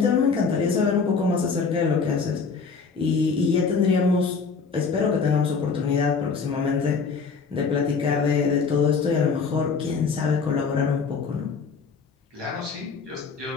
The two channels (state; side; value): quieter; right; 5.2 dB